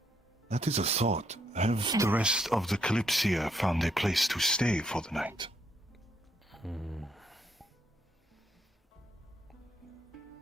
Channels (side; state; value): both; normal; correlation 0.74